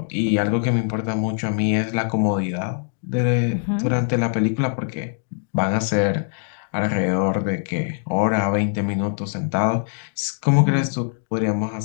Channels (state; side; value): silent; right; digital silence